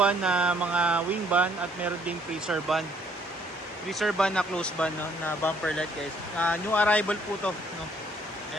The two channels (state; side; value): normal; both; correlation 0.64